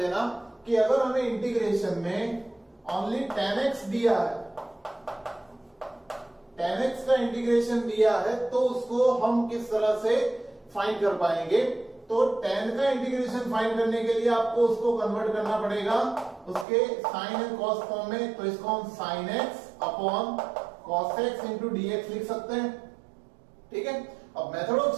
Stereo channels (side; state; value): left; drops out; at 16.7 s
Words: कि अगर हमें इंटीग्रेशन में ओनली 10x दिया है, 10x का इंटीग्रेशन दिया है, तो उसको हम किस तरह से फाइंड कर पाएंगे। तो 10 का इंटीग्रेशन फाइंड करने के लिए आपको उसको कन्वर्ट करना पड़ेगा उसके साइन एंड कॉस फॉर्म में। तो इसको हम sine x upon cos x into dx लिख सकते हैं। ठीक है, अब मेथड ऑफ